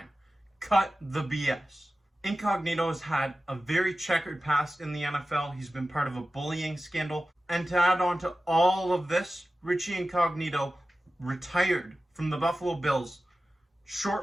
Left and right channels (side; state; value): both; normal; correlation 0.95